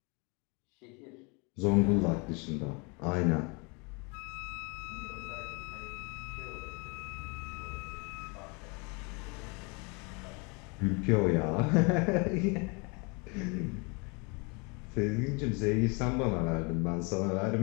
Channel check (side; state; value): right; quieter; 31.3 dB